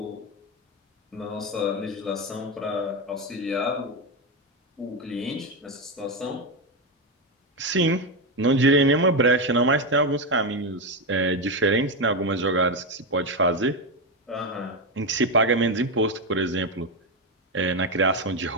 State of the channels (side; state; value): both; normal; correlation 0.10